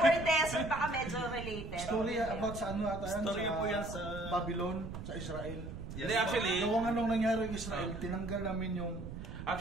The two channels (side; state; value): right; noise; rumble, 9 dB below the sound